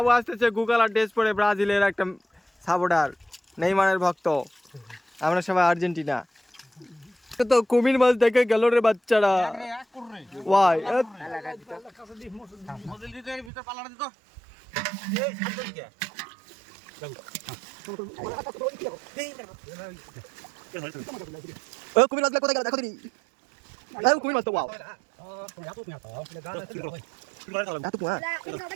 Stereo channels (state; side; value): drops out; left; at 13.5 s